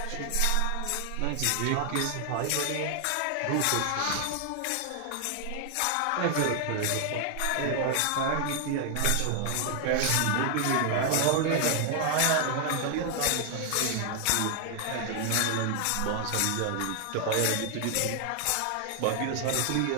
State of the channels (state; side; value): different; both; correlation 0.00